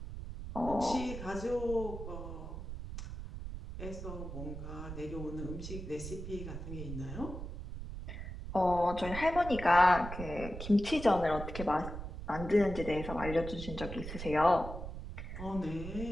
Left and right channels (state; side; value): noise; right; rumble, 8 dB below the sound